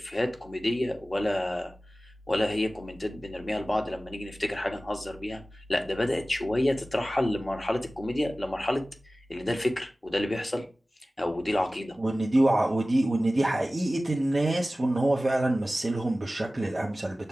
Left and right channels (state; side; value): normal; both; correlation 0.97